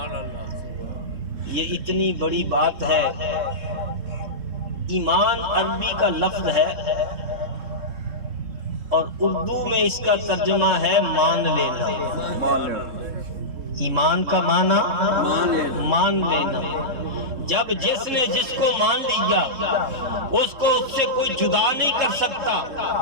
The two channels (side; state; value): left; late; 3.7 ms